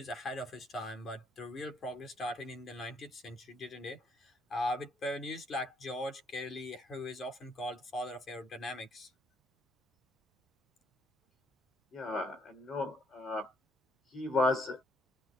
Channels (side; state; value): both; normal; correlation 0.70